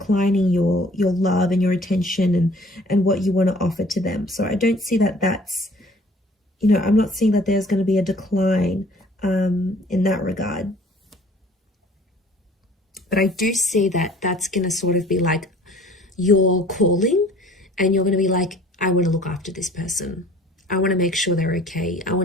your love and your attention and what you want to offer to them. So I don't see that that's, you know, I'm not seeing that there's going to be a decline in that regard. But I do see that that's going to sort of be like your calling, and you're going to be like, I want to look after this person. I want to make sure they're okay. I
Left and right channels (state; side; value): normal; both; correlation 0.52